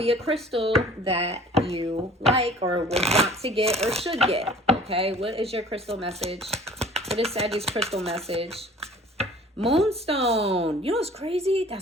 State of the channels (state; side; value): normal; both; correlation 0.49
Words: a crystal that you like or would want to get or should get. Okay, what is your crystal message? What is Sagittarius crystal message? Moonstone. You know what's crazy?